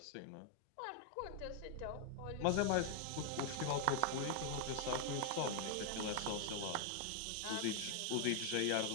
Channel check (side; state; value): both; different; correlation 0.00